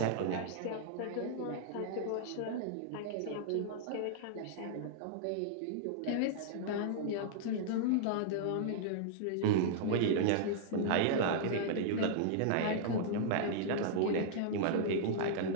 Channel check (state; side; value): different; both; correlation -0.02